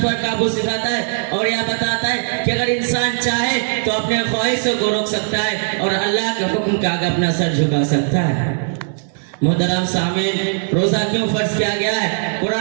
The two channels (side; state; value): left; silent; digital silence